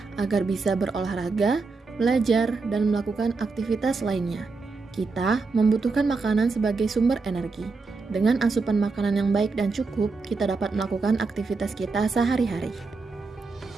agar bisa berolahraga, belajar, dan melakukan aktivitas lainnya. Kita membutuhkan makanan sebagai sumber energi. Dengan asupan makanan yang baik dan cukup, kita dapat melakukan aktivitas kita sehari-hari.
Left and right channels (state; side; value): quieter; left; 4.2 dB